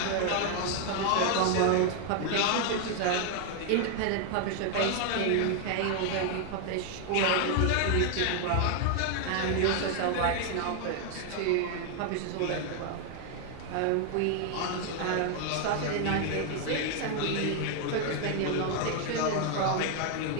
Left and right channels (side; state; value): both; different; correlation 0.00